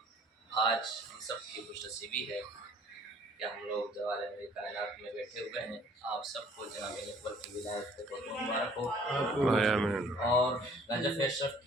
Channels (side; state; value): both; normal; correlation 0.56